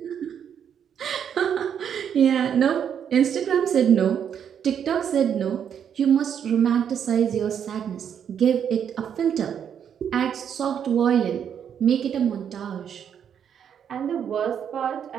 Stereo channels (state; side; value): quieter; left; 8.4 dB